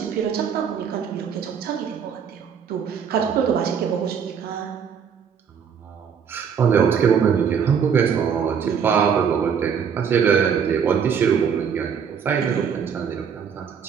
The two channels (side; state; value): left; quieter; 7.2 dB